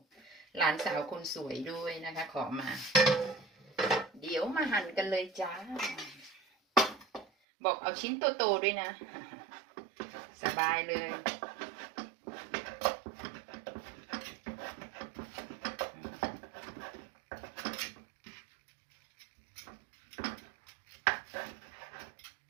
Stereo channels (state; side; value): drops out; left; at 7.2 s